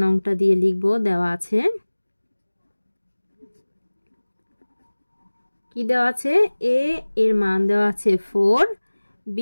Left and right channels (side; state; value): both; inverted; correlation -1.00